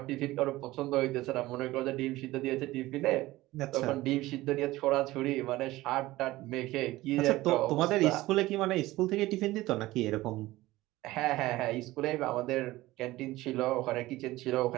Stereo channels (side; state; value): left; quieter; 17.9 dB